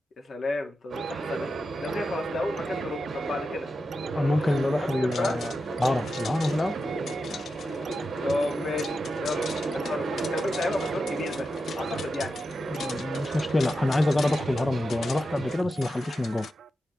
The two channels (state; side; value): normal; both; correlation 0.89